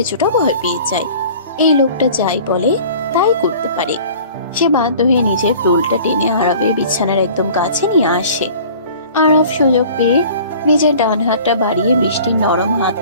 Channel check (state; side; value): inverted; both; correlation -0.46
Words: ভয় পেয়ে যায়। এই লোকটা যাই বলে তাই করতে পারে। সে বাধ্য হয়ে নিজের টোলটা টেনে আরবের বিছানার একদম কাছে নিয়ে আসে। আরব সুযোগ পেয়ে নিজের ডান হাতটা বাড়িয়ে বৃষ্টির নরম